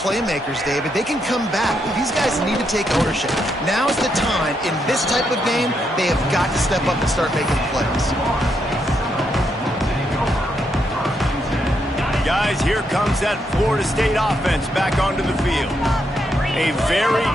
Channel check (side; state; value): both; normal; correlation 0.79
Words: David. They can come back. These guys need to take ownership. Now's the time. In this type of game, they have got to step up and start making plays. Guys, here comes that Florida State offense back onto the field. A very